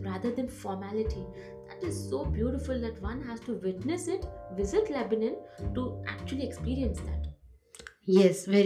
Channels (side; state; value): both; identical; correlation 1.00